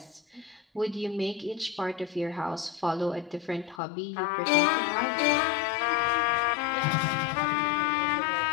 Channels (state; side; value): drops out; right; at 3.8 s